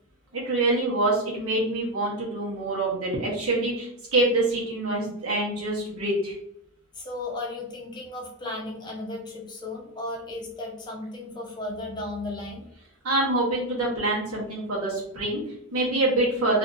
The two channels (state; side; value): normal; both; correlation 0.07